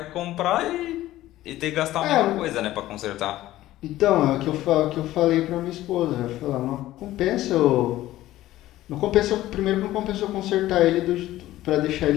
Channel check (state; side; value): quieter; right; 15.2 dB